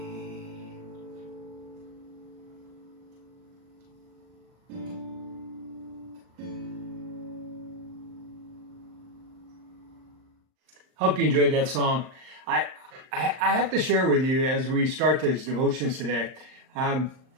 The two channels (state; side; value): late; left; 39 ms